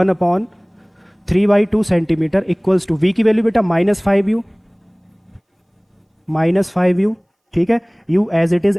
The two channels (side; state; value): both; identical; correlation 1.00